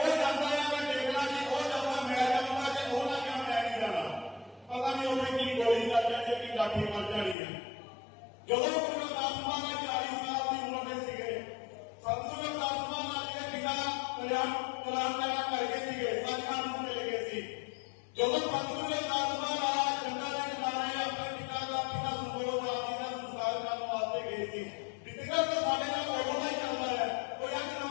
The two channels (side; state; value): right; drops out; at 7.4 s